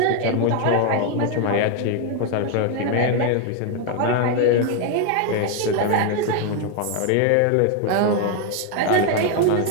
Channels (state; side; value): different; both; correlation 0.01